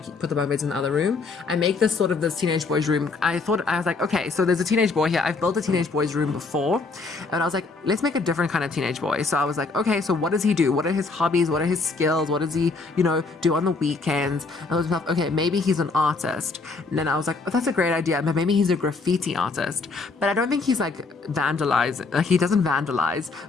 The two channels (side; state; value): right; quieter; 4.0 dB